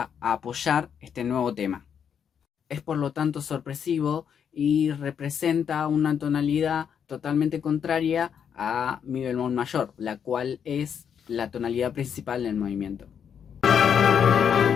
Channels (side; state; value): right; quieter; 7.8 dB